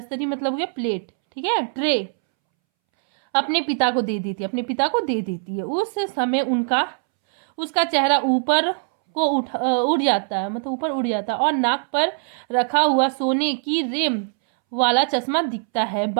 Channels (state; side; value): silent; left; 64 dB below the other